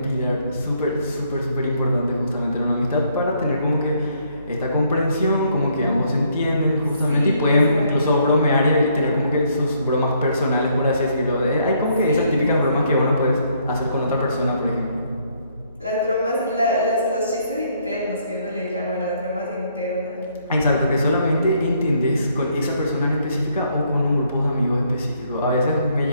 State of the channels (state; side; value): inverted; both; correlation -0.69